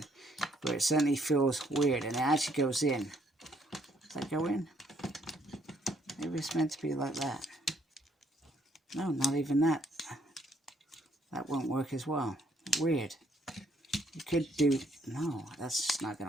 but it certainly feels weird. And it actually goes in. Does that go in? Maybe it's meant to be like that. No, not even that. That won't work as well. Weird. You could do... No, that's just not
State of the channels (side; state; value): both; normal; correlation 0.68